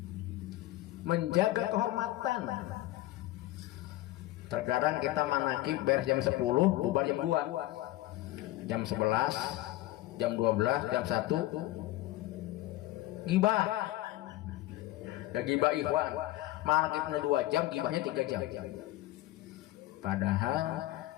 Menjaga kehormatan. Terkadang kita manakib beres jam 10, bubar jam 2, jam 11, jam 12, jam 1 gibah. Gibah ikhwan. Manakibnya 2 jam, gibahnya 3 jam. Padahal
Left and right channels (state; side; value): quieter; right; 16.4 dB